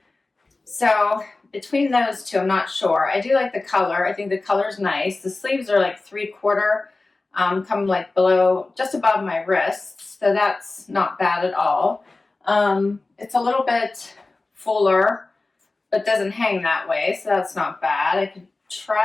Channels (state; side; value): quieter; right; 3.3 dB